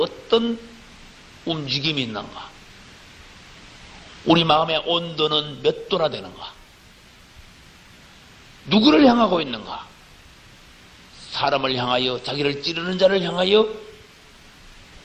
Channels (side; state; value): both; identical; correlation 1.00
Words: 움직임이 있는가? 우리 마음의 온도는 몇 도나 되는가? 누구를 향하고 있는가? 사람을 향하여, 자기를 찌르는 자를 향하여